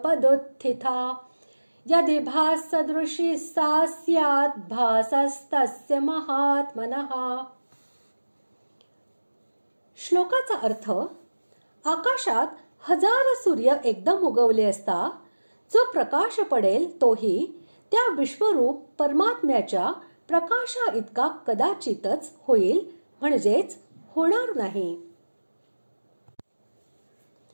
यदि भाससदृशी सा स्यात् भासस्तस्य महात्मनः. श्लोकाचा अर्थ: आकाशात हजार सूर्य एकदम उगवले असता जो प्रकाश पडेल तोही त्या विश्वरूप परमात्म्याच्या प्रकाशा इतका कदाचितच होईल, म्हणजेच होणार नाही.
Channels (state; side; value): inverted; both; correlation -1.00